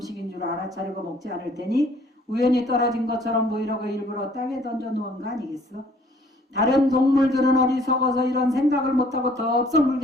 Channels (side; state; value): both; normal; correlation 0.59